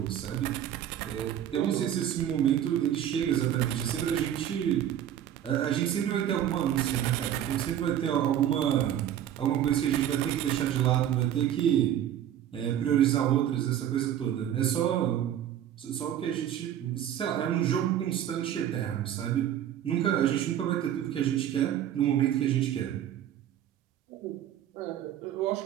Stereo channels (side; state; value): left; quieter; 10.7 dB